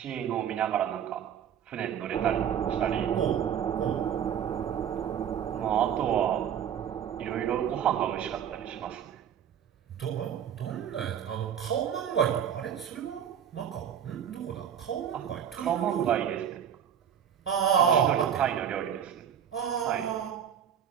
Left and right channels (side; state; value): left; quieter; 9.0 dB